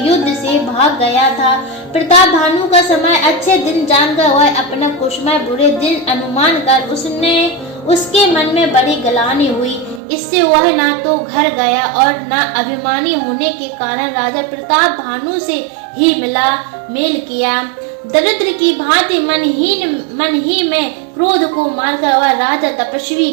युद्ध से भाग गया था। प्रताप भानु का समय अच्छे दिन जानकर वह अपना कुशमय बुरे दिन अनुमान कर उसके मन में बड़ी गलानी हुई। इससे वह न तो घर गया और न अभिमानी होने के कारण राजा प्रताप भानु से ही मेल किया। दरिद्र की भांति मन ही में क्रोध को मारकर वह राजा तपस्वी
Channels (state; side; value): drops out; left; at 10.0 s